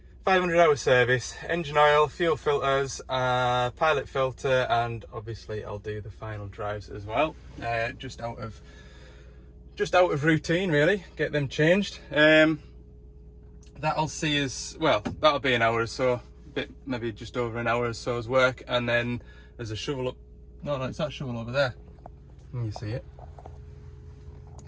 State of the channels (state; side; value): identical; both; correlation 1.00